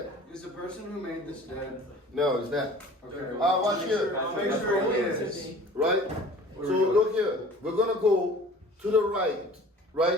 that. Is the person who made this dead? No, it's not. Okay. Watch here. I'll make sure he is. Right? So look here. We're gonna go to the right,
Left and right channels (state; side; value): normal; both; correlation 0.46